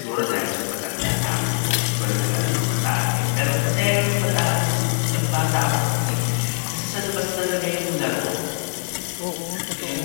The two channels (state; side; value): silent; right; 64 dB below the other